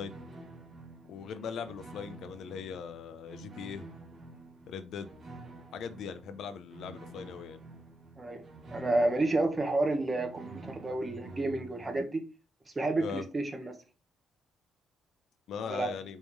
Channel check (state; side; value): normal; both; correlation 0.85